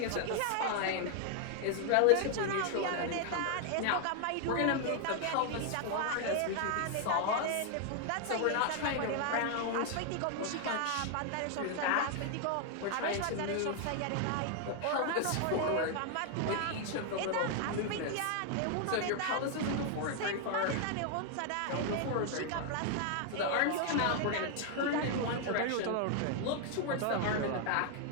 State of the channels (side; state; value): both; different; correlation 0.00